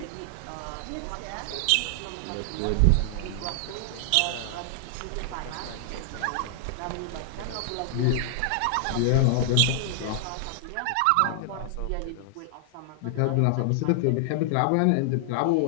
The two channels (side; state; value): both; different; correlation 0.00